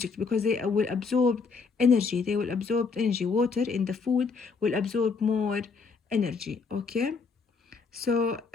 because they will absorb energy. Water in the food will absorb more energy. Okay, so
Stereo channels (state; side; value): quieter; right; 4.8 dB